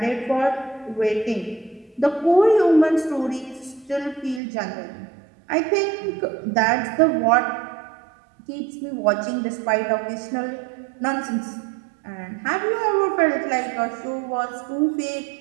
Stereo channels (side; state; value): left; drops out; at 4.4 s